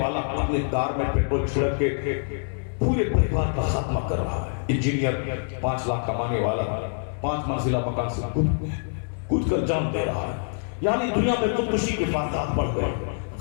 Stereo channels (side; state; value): right; silent; digital silence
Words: والا اپنے کار میں پیٹرول چھڑک کے پورے پریوار کا خاتمہ کر رہا ہے۔ انجینئر 5 لاکھ کمانے والا 5 منزلہ مکان سے کود کر جان دے رہا ہے۔ یعنی دنیا میں خودکشی کے واقعات بڑھ گئے۔